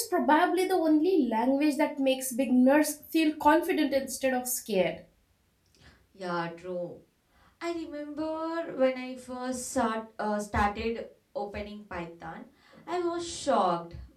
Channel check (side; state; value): both; identical; correlation 1.00